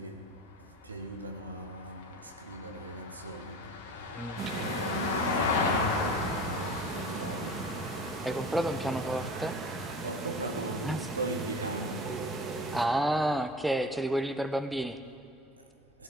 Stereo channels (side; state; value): both; normal; correlation 0.37